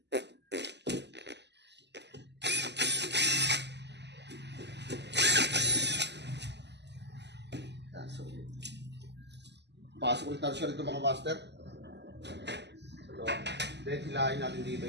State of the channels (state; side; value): late; left; 0.50 ms